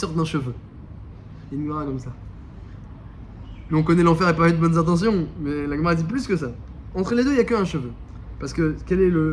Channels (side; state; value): both; identical; correlation 1.00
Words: d'un cheveu. Il y a une Gemara comme ça. Nous, on connaît l'enfer et pas avec de bonnes intentions, mais la Gemara dit plus que ça. Entre les deux, il n'y a qu'un cheveu. Parce que quel est